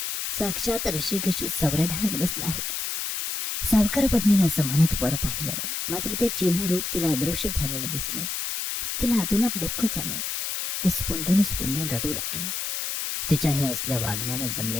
साक्षात ऋषिकेशी चौऱ्या ढाळत बसला आहे. सावकार पत्नीनं असं म्हणत वर पाहिलं, मात्र ते चिन्ह रूप तिला अदृश्य झालेलं दिसलं. तिला आतूनात दुःख झालं. ती स्पुंदून स्पुंदून रडू लागली. तिच्या हे असल्या वागण्यानं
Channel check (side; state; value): left; noise; hiss, 3 dB below the sound